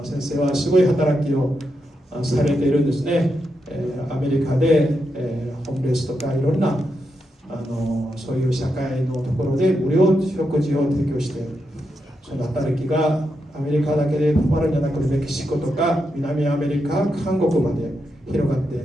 先生はすごい働きをされているんですね。アメリカで、ホームレスとかいろんなそういう社会のところで無料食事を提供している。その働きがアメリカだけで止まるんじゃなくて、メキシコとか南アメリカ、韓国まで広がって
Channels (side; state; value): both; normal; correlation 0.85